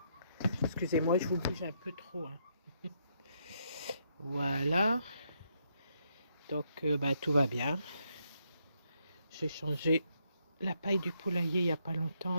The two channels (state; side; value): inverted; both; correlation -0.76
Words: Excusez-moi, je vous bouge un peu trop. Hein. Voilà. Donc, tout va bien. J'ai changé la paille du poulailler il n'y a pas